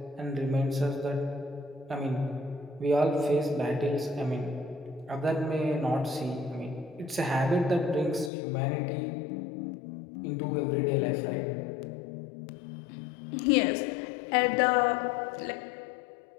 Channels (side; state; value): right; drops out; at 8.3 s